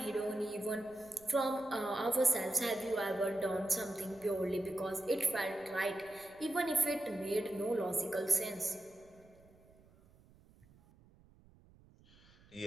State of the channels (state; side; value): noise; right; rumble, 27 dB below the sound